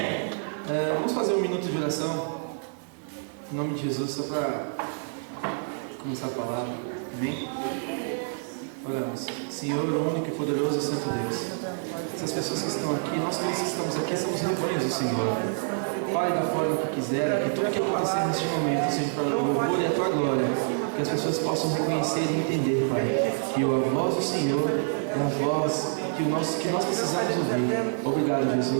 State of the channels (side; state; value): left; silent; 60 dB below the other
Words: Vamos fazer um minuto de oração. Em nome de Jesus, só para começar a palavra. Amém? Oramos. Senhor, o único e poderoso e santo Deus. Essas pessoas que estão aqui, nós todos que estamos aqui, somos rebanhos do Senhor. Fale da forma que quiser, que tudo que acontecer neste momento seja para o louvor e a tua glória. Que as pessoas possam reconhecer e entender, Pai, que a voz do Senhor é a voz que nós precisamos ouvir. Obrigado,